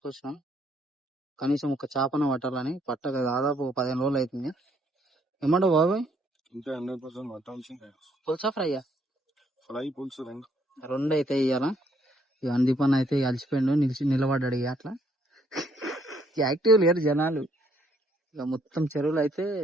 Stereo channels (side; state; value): both; normal; correlation 0.68